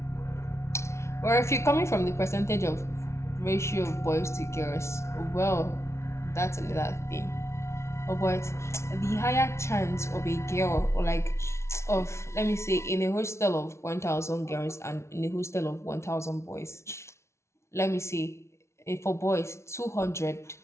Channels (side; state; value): right; late; 0.13 ms